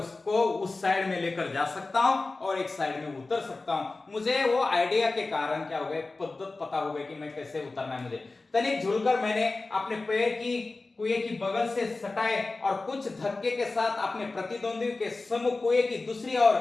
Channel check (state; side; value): quieter; right; 3.5 dB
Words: उस साइड में लेकर जा सकता हूं और एक साइड में उतर सकता हूं। मुझे वो आइडिया के कारण क्या हो गया, पद्धत पता हो गई कि मैं कैसे उतरना है। मुझे तनिक झुलकर मैंने अपने पैर की कुएं की बगल से सटाए और कुछ धक्के के साथ अपने प्रतिद्वंदी के सम्मुख कुएं की दूसरी ओर